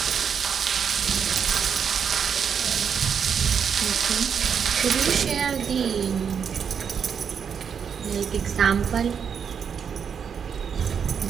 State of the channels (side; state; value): left; quieter; 7.1 dB